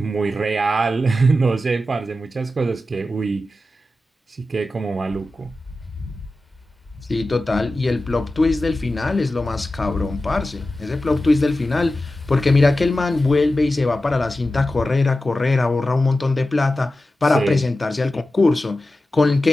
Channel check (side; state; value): both; normal; correlation 0.93